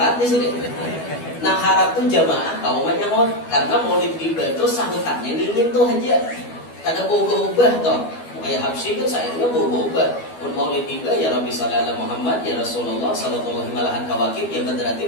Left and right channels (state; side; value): late; right; 12 ms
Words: di sini. Nah harap tuh jamaah kawan menyahut karena Maulid Tiba itu sahutannya dingin tuh aja. Kada ubah toh. Kayak Habsyi kan sayangnya berubah. Mun Maulid Tiba ya Rabbi sholli ala Muhammad ya Rasulullah sallallahu alaihi kawakib ya